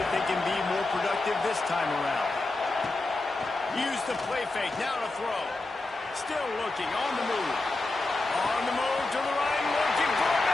they can be more productive this time around. Use the play fake. Now to throw. Still looking. On the move. On the move to the right. Looking for a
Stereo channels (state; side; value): quieter; right; 3.1 dB